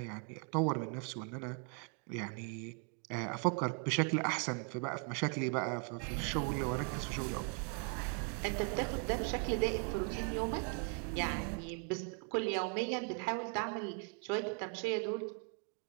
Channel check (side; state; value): left; quieter; 39.6 dB